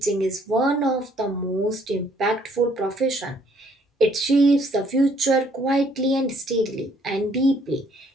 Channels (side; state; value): both; normal; correlation 0.64